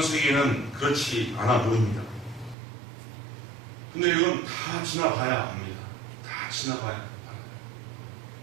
세계는 그렇지 않아 보입니다. 근데 이건 다 지나봐야 합니다. 다 지나봐야 합니다.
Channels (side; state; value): left; drops out; at 2.6 s